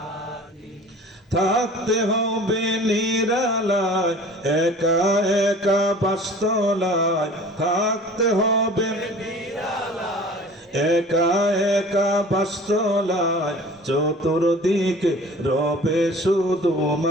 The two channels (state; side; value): normal; both; correlation 0.44